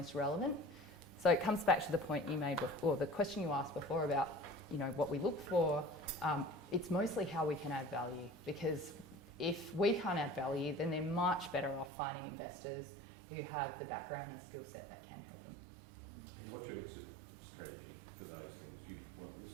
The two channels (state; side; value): drops out; left; at 11.9 s